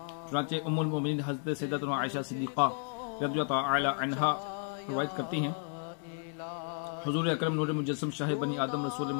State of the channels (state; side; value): silent; right; 56 dB below the other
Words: چنانچہ ام المومنین حضرت سیدتنا عائشہ صدیقہ رضی اللہ تعالی عنہا روایت کرتی ہیں، حضور اکرم نور مجسم شاہ بنی آدم رسول